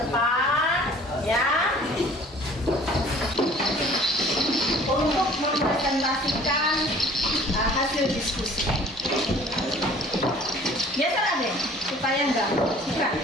ya. Untuk mempresentasikan hasil diskusi. Biasa deh, supaya enggak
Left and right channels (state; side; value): normal; both; correlation 0.51